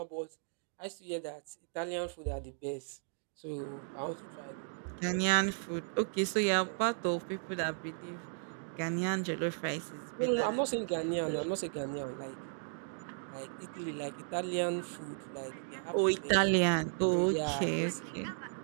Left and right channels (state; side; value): silent; left; digital silence